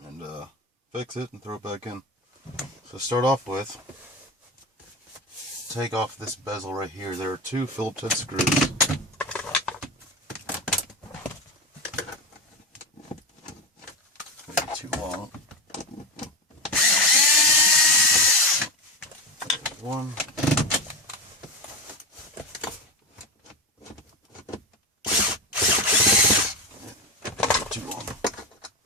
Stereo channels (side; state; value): both; normal; correlation 0.19